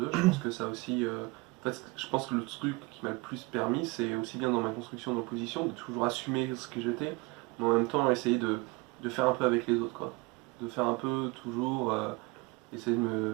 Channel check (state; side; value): quieter; left; 25.3 dB